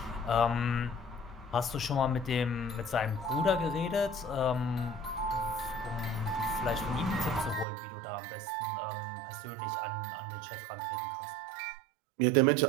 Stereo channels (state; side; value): drops out; left; at 7.7 s